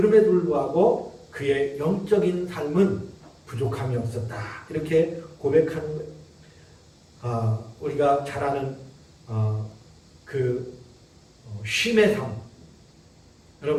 불구하고 그의 영적인 삶은 부족함이 없었다. 이렇게 고백하는 거예요. 우리가 잘 아는 쉼의 삶.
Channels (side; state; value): both; identical; correlation 1.00